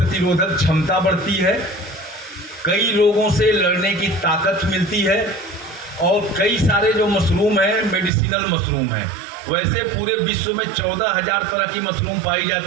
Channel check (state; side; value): drops out; left; at 8.1 s